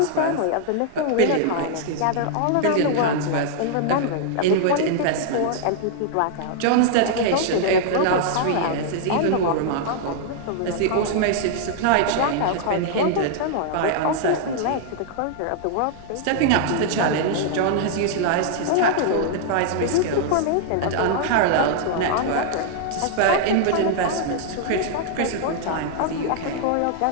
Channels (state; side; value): different; both; correlation -0.01